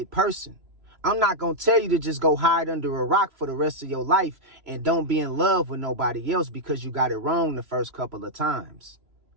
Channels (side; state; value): left; late; 3.0 ms